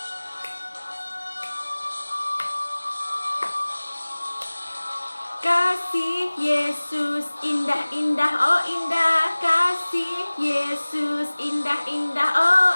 Kasih Yesus indah-indah, oh indah. Kasih Yesus indah-indah, oh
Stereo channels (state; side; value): inverted; both; correlation -1.00